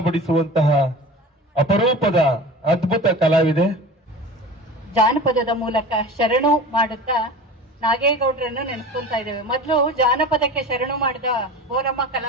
ಅಪರೂಪದ ಅದ್ಭುತ ಕಲಾವಿದೆ. ಜಾನಪದದ ಮೂಲಕ ಶರಣು ಮಾಡುತ್ತಾ ನಾಗೇಗೌಡರನ್ನು ನೆನೆಸ್ಕೊಂತಾ ಇದ್ದೇವೆ. ಮೊದಲು ಜಾನಪದಕ್ಕೆ ಶರಣು ಮಾಡಿದ ಬೋರಮ್ಮ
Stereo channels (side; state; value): both; normal; correlation 0.35